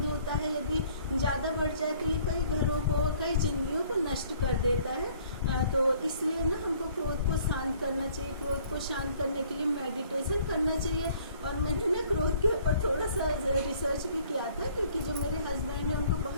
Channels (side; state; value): both; inverted; correlation -0.58